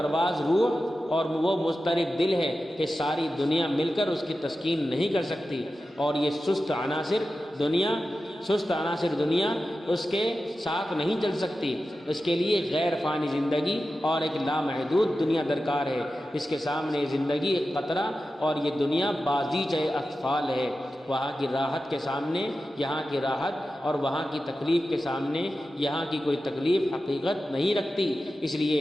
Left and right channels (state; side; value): normal; both; correlation 0.93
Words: روح اور وہ مضطرب دل ہے کہ ساری دنیا مل کر اس کی تسکین نہیں کر سکتی، اور یہ سست عناصر دنیا اس کے ساتھ نہیں چل سکتی۔ اس کے لیے غیر فانی زندگی اور ایک لامحدود دنیا درکار ہے۔ اس کے سامنے زندگی ایک قطرہ اور یہ دنیا بازیچہ اطفال ہے۔ وہاں کی راحت کے سامنے یہاں کی راحت، اور وہاں کی تکلیف کے سامنے یہاں کی کوئی تکلیف حقیقت نہیں رکھتی۔ اس لیے